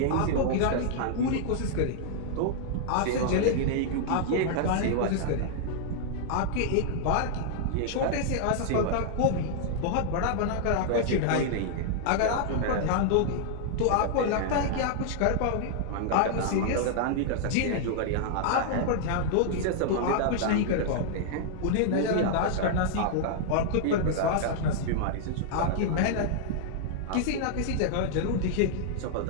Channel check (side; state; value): both; different; correlation -0.01